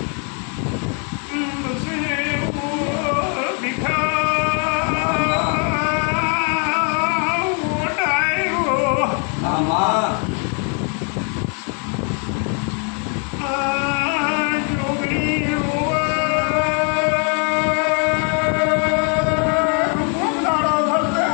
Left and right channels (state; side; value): quieter; right; 39.4 dB